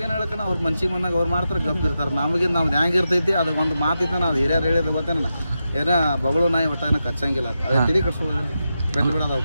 ಏನು ಹೇಳಕ್ಕ, ಅವ್ರ ಮನ್ಸಿಗೆ ಬಂದಾಗ ಅವ್ರು ಮಾಡ್ತಾರೆ, ಗಪ್ ಇರ್ತಾರೆ. ನಮಗೆ ನಮ್ದು ಹೆಂಗೆ ಇರ್ತೈತಿ ಅದು ಒಂದು ಮಾತಿತ್ತಾನ, ಅದು ಹಿರಿಯರು ಹೇಳಿದ ಗೊತ್ತೇನ, ಏನ ಬಗಳು ನಾಯಿ ಒಟ್ಟ ಏನೋ ಕಚ್ಚಂಗಿಲ್ಲ. ಅದೇ ತಿಳಿ ಕಟ್ಸೋದು ಬೆಟ್ಟು ಬಿಡೋದು.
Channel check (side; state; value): both; inverted; correlation -0.89